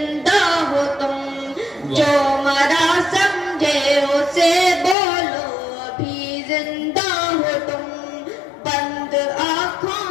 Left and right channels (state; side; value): drops out; right; at 5.0 s